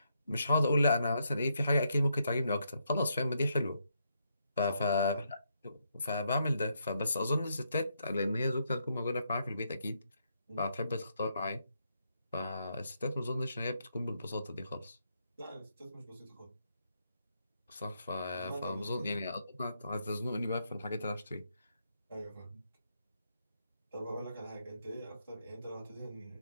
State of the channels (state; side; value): inverted; both; correlation -0.78